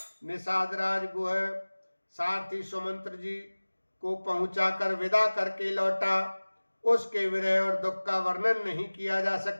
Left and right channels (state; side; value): inverted; both; correlation -1.00